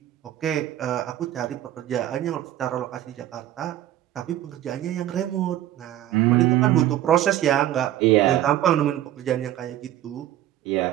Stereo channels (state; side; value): quieter; left; 13.0 dB